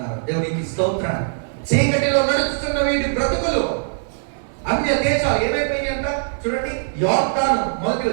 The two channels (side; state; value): left; silent; digital silence